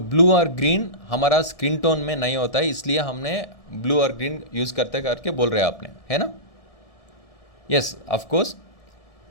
ब्लू और ग्रीन हमारा स्क्रीन टोन में नहीं होता है, इसलिए हमने ब्लू और ग्रीन यूज़ करते करके बोल रहे हैं आपने, है ना? Yes of course.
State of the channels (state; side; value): late; right; 1.4 ms